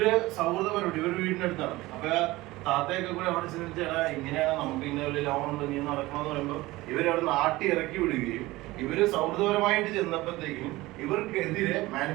സൗഹൃദപരമായിട്ട് ഇവരുടെ വീടിന്റെ അടുത്താണ്. അപ്പൊ താത്തയൊക്കെ കൂടെ അവിടെ ചിന്തിച്ചാൽ ഇങ്ങനെയാണ് നമുക്ക് ഇന്ന ഒരു ലോൺ ഉണ്ട് നീ നടക്കണമെന്ന് പറയുമ്പോൾ ഇവരവിടെ നാട്ടി ഇറക്കി വിടുകയും ഇവര് സൗഹൃദപരമായിട്ട് ചെന്നപ്പോഴത്തേക്കും ഇവർക്കെതിരെ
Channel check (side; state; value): left; quieter; 19.3 dB